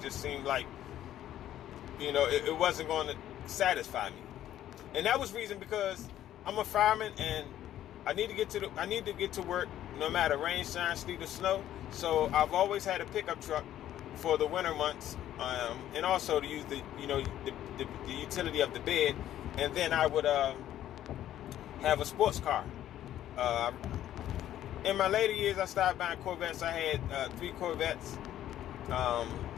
seemed like, it wasn't going to satisfy me. And that was reason because I'm a fireman and I need to get to work no matter rain, shine, sleet, or snow. So I've always had a pickup truck for the winter months, and also to use the utility of the bed. And then I would have a sports car. In my later years, I started buying Corvettes. I had 3 Corvettes,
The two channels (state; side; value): quieter; right; 12.1 dB